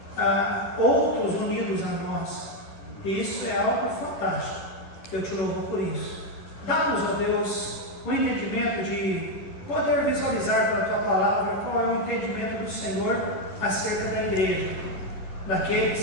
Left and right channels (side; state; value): right; late; 10 ms